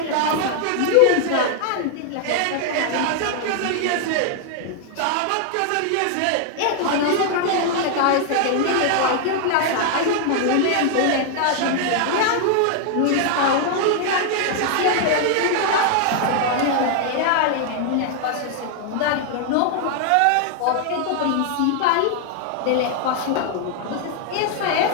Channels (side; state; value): both; different; correlation 0.00